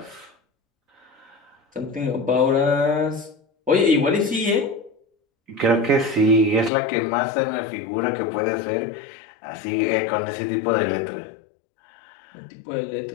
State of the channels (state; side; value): drops out; right; at 6.7 s